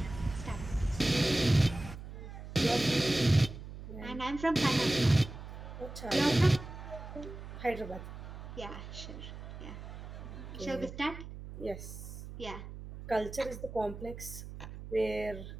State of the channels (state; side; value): noise; right; hum, 11 dB below the sound